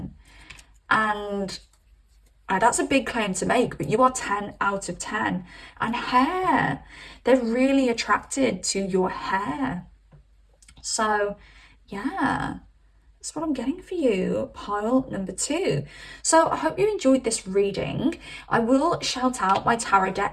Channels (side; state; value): both; identical; correlation 1.00